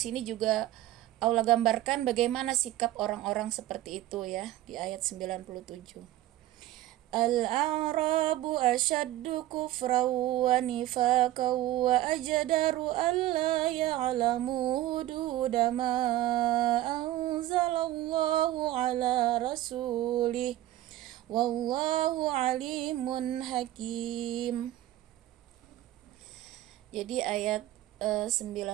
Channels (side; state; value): left; quieter; 14.8 dB